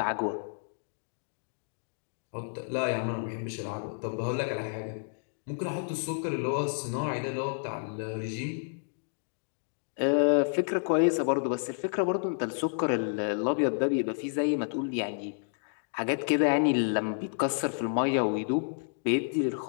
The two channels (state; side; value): silent; right; digital silence